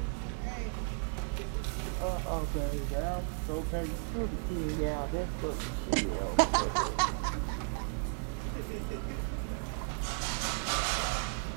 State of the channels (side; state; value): left; silent; 55 dB below the other